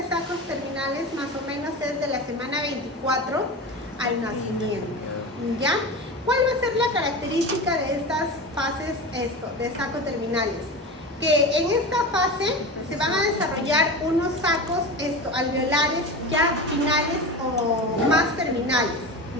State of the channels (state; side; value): normal; both; correlation 0.27